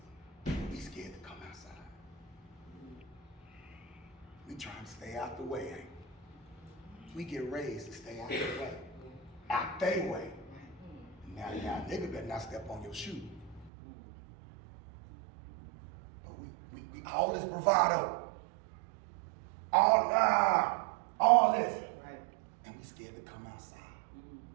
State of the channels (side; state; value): left; drops out; at 13.7 s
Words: We scared to come outside. We trying to stay out the way, ain't we? We get raised to stay out the way. Out they way. Now, nigga better not step on your shoe. But we all this bravado. All this. Right. And we scared to come outside.